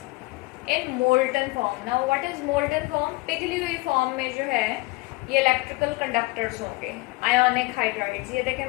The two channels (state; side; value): quieter; right; 23.4 dB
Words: in molten form. Now what is molten form? पिघली हुई फॉर्म में जो है ये इलेक्ट्रिकल कंडक्टर्स होंगे आयोनिक हाइड्राइड्स। ये देखें,